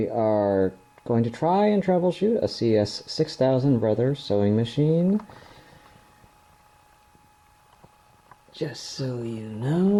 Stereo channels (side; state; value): both; identical; correlation 1.00